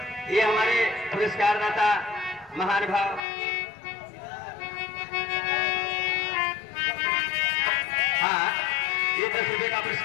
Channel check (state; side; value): drops out; right; at 3.2 s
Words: ये हमारे पुरस्कार दाता महानुभाव हाँ, ये 10 रुपए का